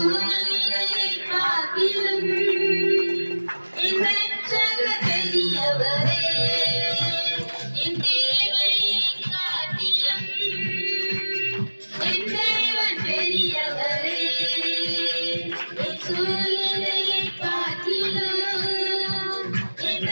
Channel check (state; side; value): inverted; both; correlation -1.00